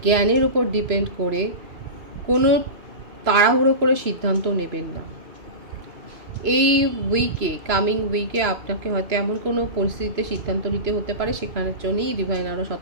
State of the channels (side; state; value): left; late; 3.0 ms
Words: জ্ঞানের ওপর ডিপেন্ড করে কোনো তাড়াহুড়ো করে সিদ্ধান্ত নেবেন না। এই কামিং উইকে আপনাকে হয়তো এমন কোনো পরিস্থিতিতে সিদ্ধান্ত নিতে হতে পারে, সেখানের জন্যই ডিভাইন আরও